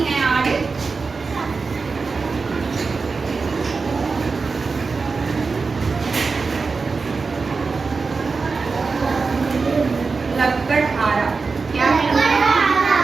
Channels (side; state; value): left; quieter; 4.4 dB